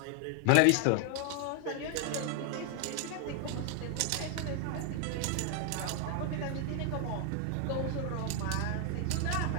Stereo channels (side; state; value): both; different; correlation 0.00